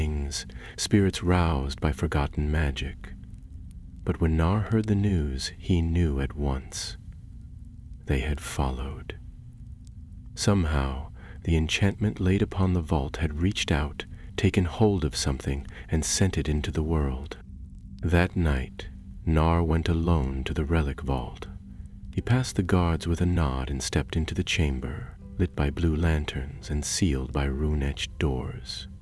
spirits roused by forgotten magic. But when Nar heard the news, he knew at once. They had followed. Somehow, the enchantment laid upon the vault had reached out, taken hold of something, and sent it into the world. That night, Nar went alone to the relic vault. He passed the guards with a nod and stepped into the chamber, lit by blue lanterns and sealed by rune-etched doors.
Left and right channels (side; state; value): both; identical; correlation 1.00